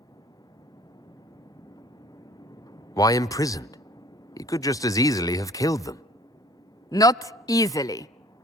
Why imprisoned? He could just as easily have killed them. Not easily.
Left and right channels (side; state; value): both; normal; correlation 0.52